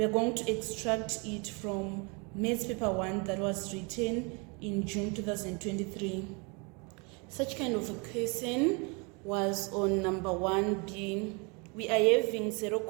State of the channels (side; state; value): left; quieter; 31.4 dB